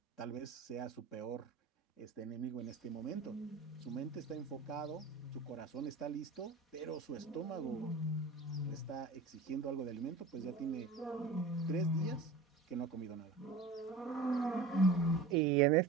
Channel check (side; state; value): left; quieter; 3.9 dB